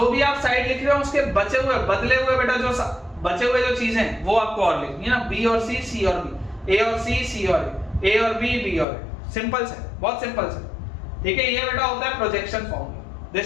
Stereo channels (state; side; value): drops out; right; at 8.8 s